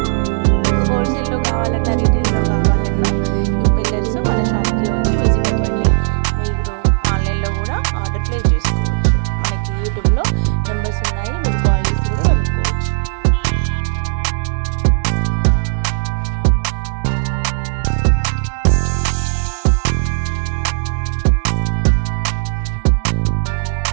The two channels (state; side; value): silent; left; digital silence